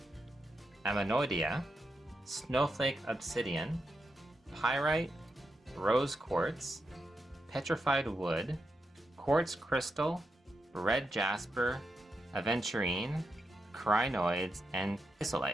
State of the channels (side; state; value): both; normal; correlation 0.85